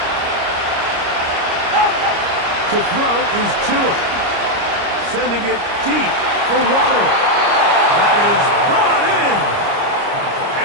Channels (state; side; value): late; left; 29 ms